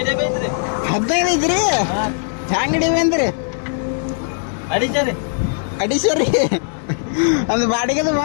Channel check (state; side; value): silent; right; 59 dB below the other